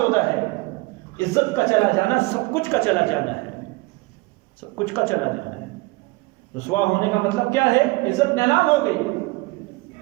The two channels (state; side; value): quieter; left; 23.6 dB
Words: ہے، عزت کا چلا جانا سب کچھ کا چلا جانا ہے، سب کچھ کا چلا جانا ہے۔ رسوا ہونے کا مطلب کیا ہے؟ عزت نیلام ہو گئی،